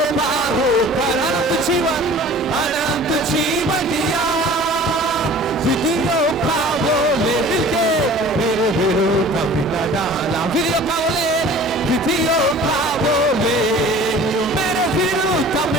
पार होकर अनंत जीवन दिया। विधियों का बोले मिलके मेरे विरोध मिला डाला। विधियों का बोले मेरे विरोध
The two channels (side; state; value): both; normal; correlation 0.45